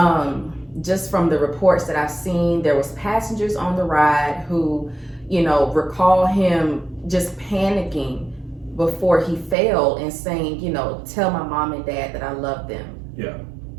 Just from the reports that I've seen, there was passengers on the ride who, recall him just panicking before he fell and saying, tell my mom and dad that I love them. Yeah.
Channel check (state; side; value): drops out; left; at 9.6 s